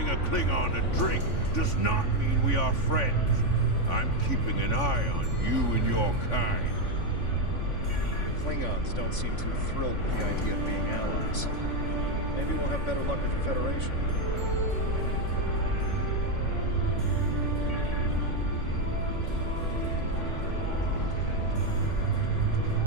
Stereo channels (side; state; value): right; late; 3.5 ms